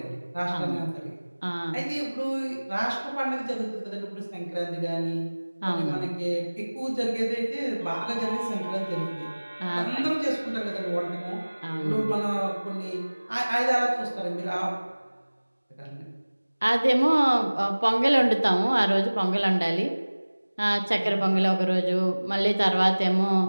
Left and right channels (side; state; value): both; inverted; correlation -1.00